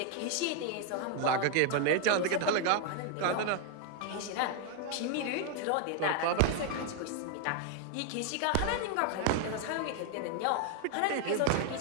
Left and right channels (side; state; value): both; different; correlation 0.00